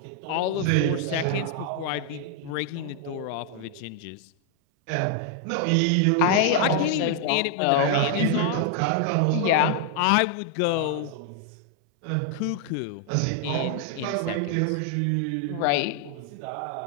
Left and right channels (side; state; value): both; different; correlation 0.00